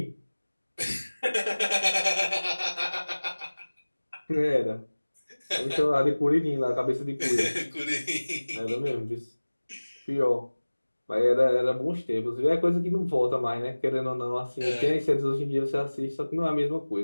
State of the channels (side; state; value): both; inverted; correlation -1.00